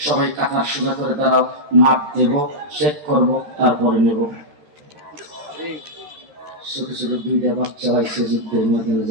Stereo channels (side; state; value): left; late; 13 ms